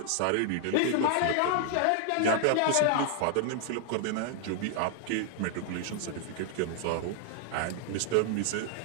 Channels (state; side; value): different; both; correlation -0.01